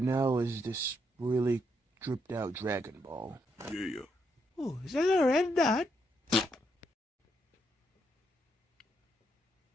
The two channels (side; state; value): both; normal; correlation 0.78